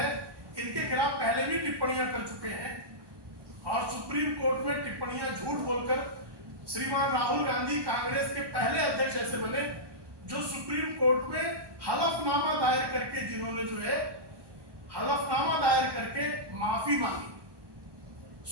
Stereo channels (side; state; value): left; late; 1.2 ms